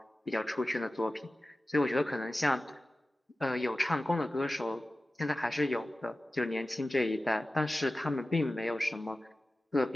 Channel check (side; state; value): both; normal; correlation 0.96